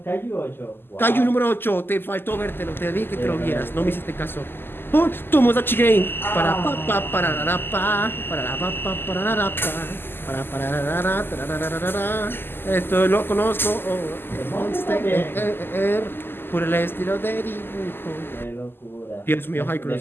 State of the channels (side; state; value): right; late; 0.10 ms